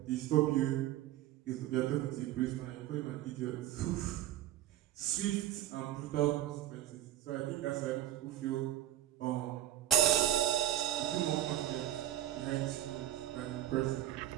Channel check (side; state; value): left; quieter; 12.8 dB